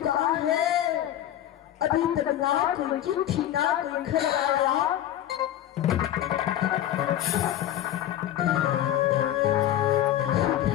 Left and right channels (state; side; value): quieter; right; 12.1 dB